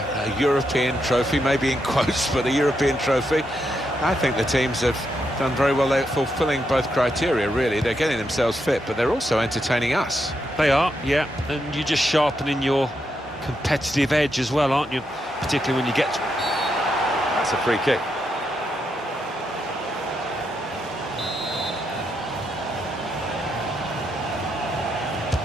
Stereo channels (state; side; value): normal; both; correlation 0.81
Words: European trophy, maybe in quotes, but a European trophy. I think the teams have done very well. They're fulfilling both criteria, really. They're getting themselves fit, but they're also entertaining us. They are, yeah, and you're just sharpening your competitive edge as well, aren't you? Particularly when you get... That's a free kick.